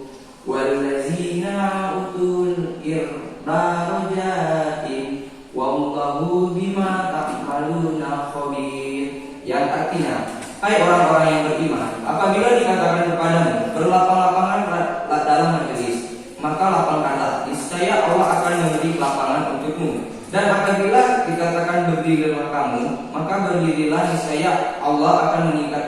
walladzina utul darajatin wallahu bima ta'maluna khabir. Yang artinya, hai orang-orang yang beriman, apabila dikatakan kepadamu berlapang-lapangan dalam majelis, maka lapangkanlah, niscaya Allah akan memberi lapangan untukmu. Dan apabila dikatakan berdirilah kamu, maka berdirilah, niscaya Allah akan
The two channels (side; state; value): both; identical; correlation 1.00